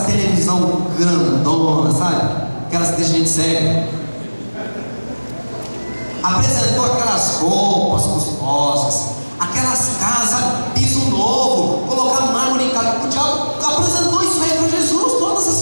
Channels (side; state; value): both; inverted; correlation -1.00